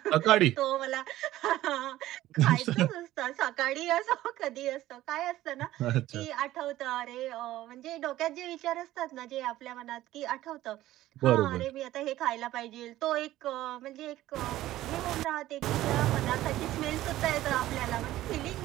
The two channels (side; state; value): left; quieter; 15.0 dB